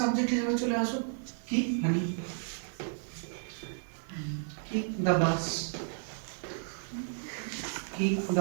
সাবজেক্ট হিসেবে চলে আসো। কি হানি, কি দ্য বাস, কি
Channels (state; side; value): silent; left; digital silence